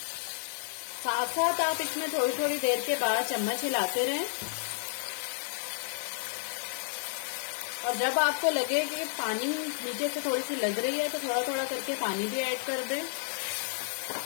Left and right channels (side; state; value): right; silent; digital silence